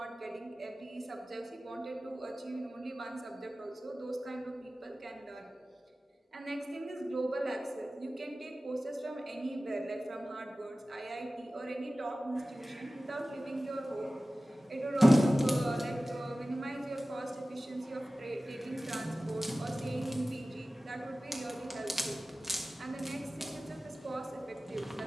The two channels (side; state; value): both; normal; correlation 0.96